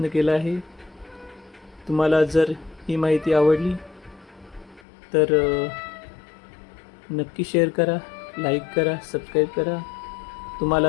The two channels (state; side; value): drops out; right; at 4.8 s